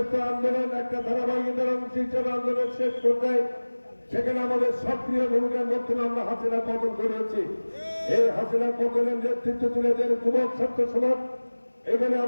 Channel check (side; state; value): both; inverted; correlation -1.00